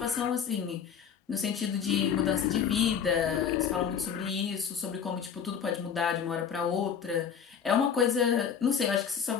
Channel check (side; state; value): right; quieter; 7.5 dB